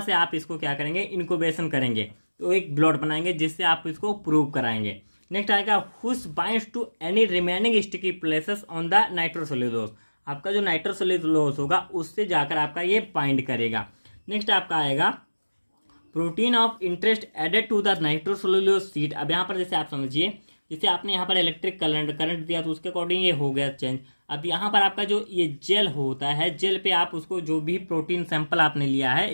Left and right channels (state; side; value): inverted; both; correlation -1.00